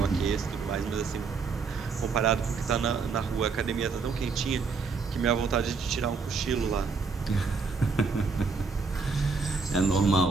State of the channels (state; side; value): quieter; left; 4.8 dB